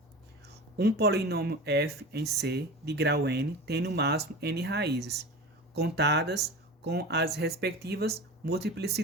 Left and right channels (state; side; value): normal; both; correlation 0.32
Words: um polinômio f em C de grau n tem no máximo n raízes, contadas com as respectivas